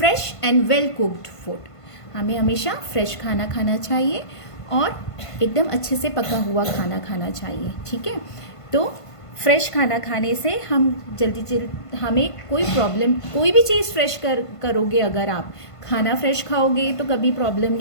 and well cooked food. हमें हमेशा फ्रेश खाना खाना चाहिए और एकदम अच्छे से पका हुआ खाना खाना चाहिए, ठीक है. तो फ्रेश खाना खाने से हम जल्दी हमें कोई प्रॉब्लम, कोई भी चीज़ फ्रेश करोगे, अगर आप खाना फ्रेश खाओगे तो कभी प्रॉब्लम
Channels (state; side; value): late; right; 1.5 ms